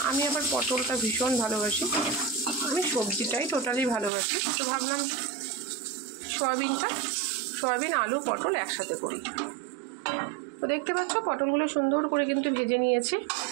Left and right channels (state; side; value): drops out; left; at 4.1 s